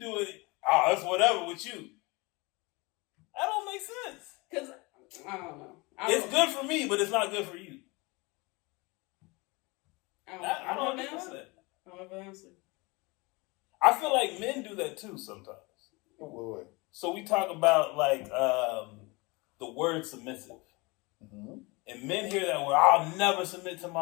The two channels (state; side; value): quieter; right; 25.7 dB